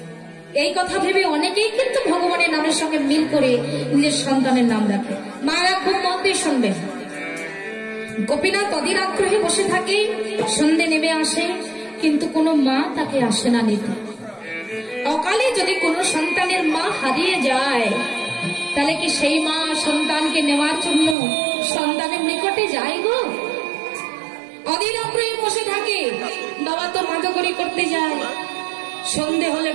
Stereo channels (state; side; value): drops out; left; at 21.2 s